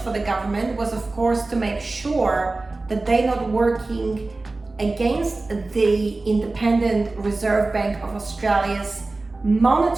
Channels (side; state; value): left; quieter; 3.3 dB